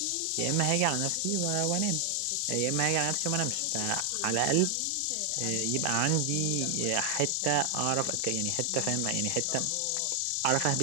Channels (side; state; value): both; different; correlation 0.00